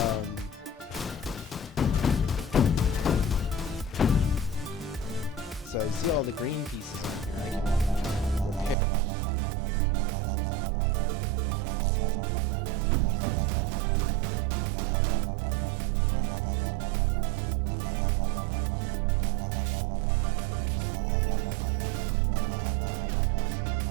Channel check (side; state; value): left; drops out; at 8.8 s